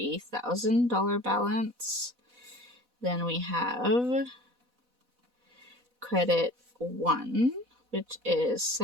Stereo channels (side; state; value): left; late; 4.1 ms